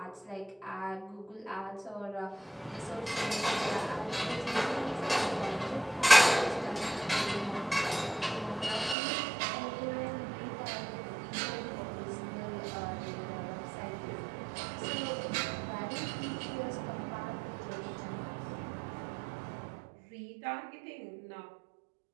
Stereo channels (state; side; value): drops out; left; at 9.0 s